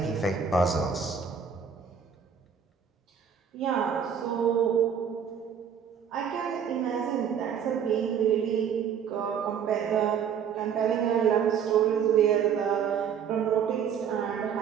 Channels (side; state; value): left; quieter; 7.6 dB